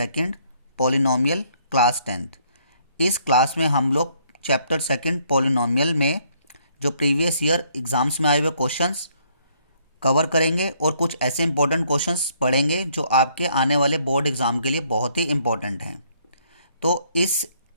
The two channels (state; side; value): inverted; both; correlation -0.66